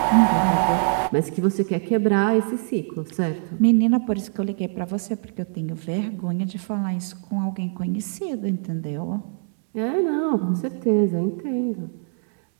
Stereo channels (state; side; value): silent; left; digital silence